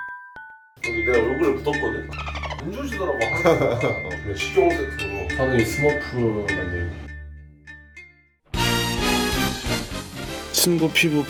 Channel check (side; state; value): both; identical; correlation 1.00